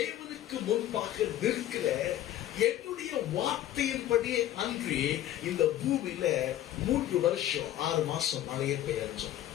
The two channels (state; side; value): quieter; right; 12.8 dB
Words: முன்பாக நிற்கிற என்னுடைய வார்த்தையின்படியே அன்றி இந்த பூமியில 3 வருஷம் 6 மாசம் மழையே பெய்யும்.